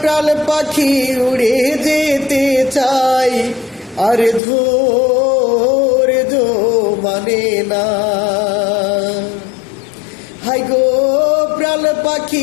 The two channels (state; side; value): drops out; right; at 4.4 s